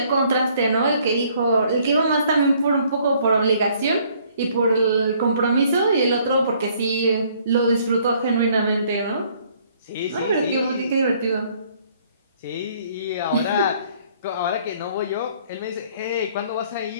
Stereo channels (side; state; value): both; inverted; correlation -0.62